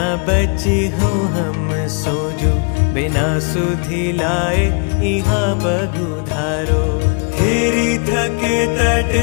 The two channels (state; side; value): quieter; right; 37.1 dB